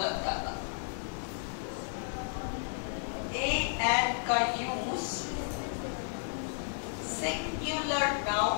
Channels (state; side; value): silent; right; digital silence